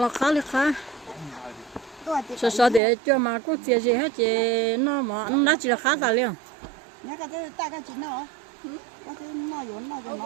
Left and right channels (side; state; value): left; drops out; at 2.8 s